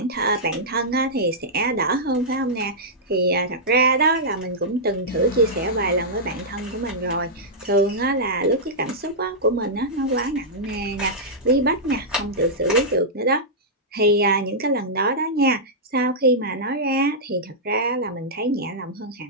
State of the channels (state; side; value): normal; both; correlation -0.10